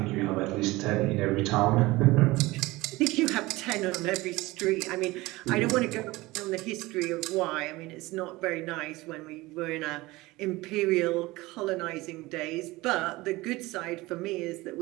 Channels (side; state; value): left; quieter; 20.4 dB